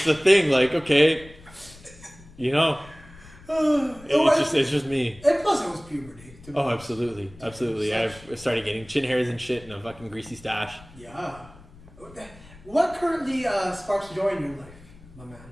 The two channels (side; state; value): left; noise; rumble, 21 dB below the sound